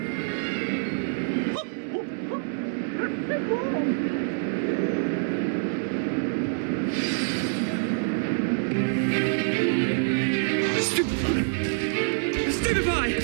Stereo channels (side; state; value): left; silent; digital silence